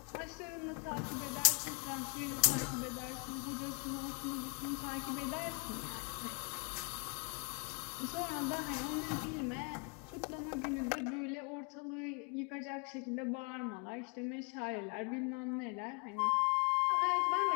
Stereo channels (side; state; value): right; quieter; 33.1 dB